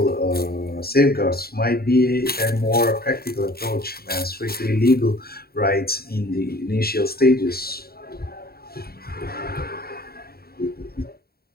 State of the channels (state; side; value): late; right; 0.45 ms